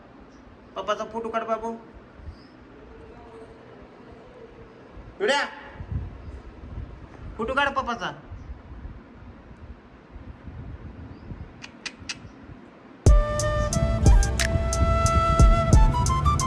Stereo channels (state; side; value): identical; both; correlation 1.00